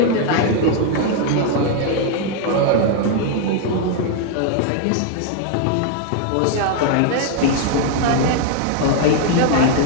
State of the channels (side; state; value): both; different; correlation 0.00